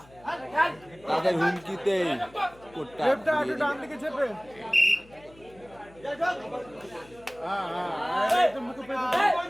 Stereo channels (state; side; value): noise; left; hum, 25 dB below the sound